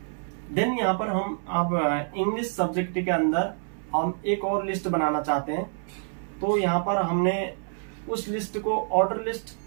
देन यहाँ पर हम अब इंग्लिश सब्जेक्ट के अंदर हम एक और लिस्ट बनाना चाहते हैं। तो यहाँ पर हमने उस लिस्ट को ऑर्डर लिस्ट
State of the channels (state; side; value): silent; left; 60 dB below the other